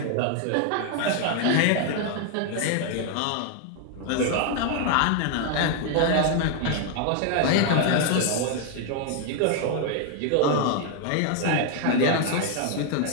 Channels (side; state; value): both; different; correlation 0.00